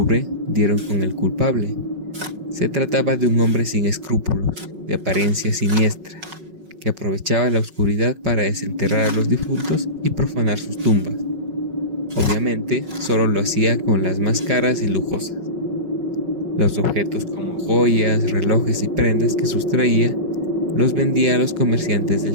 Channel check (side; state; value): left; late; 5.4 ms